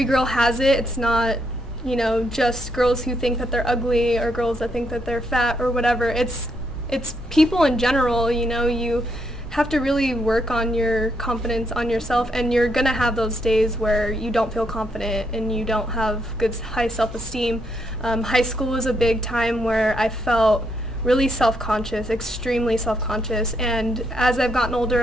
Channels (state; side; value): normal; both; correlation 0.77